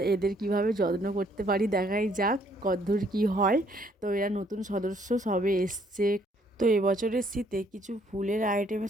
এদের কিভাবে যত্ন করতে পারি দেখাই যাক, কদ্দূর কি হয়। তো এরা নতুন সদস্য সবে এসছে। তো এবছরের শীতে কিছু ফুলের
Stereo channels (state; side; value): normal; both; correlation 0.66